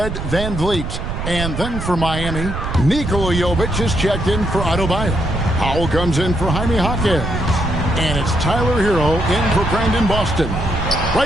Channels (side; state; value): right; noise; rumble, 5 dB below the sound